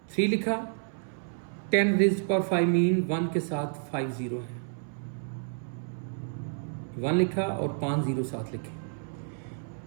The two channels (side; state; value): left; silent; 58 dB below the other